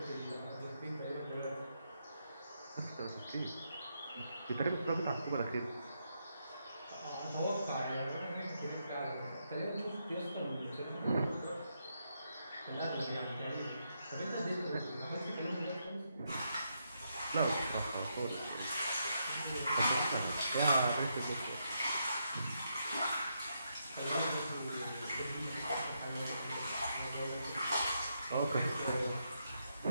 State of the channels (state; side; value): inverted; both; correlation -0.80